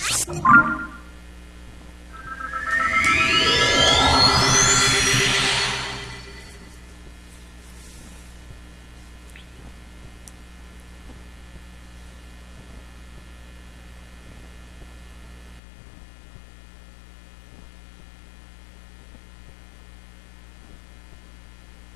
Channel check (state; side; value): drops out; right; at 15.6 s